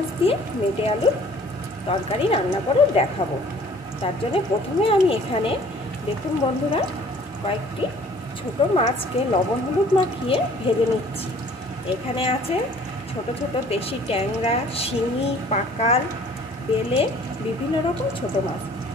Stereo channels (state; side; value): normal; both; correlation 0.53